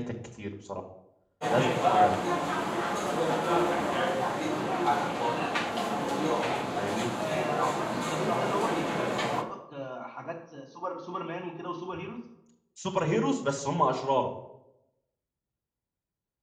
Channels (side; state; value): both; identical; correlation 1.00